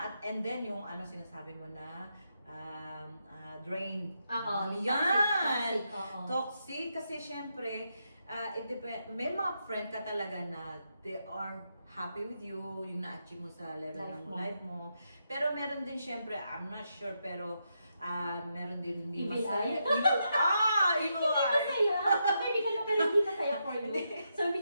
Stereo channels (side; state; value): both; inverted; correlation -0.83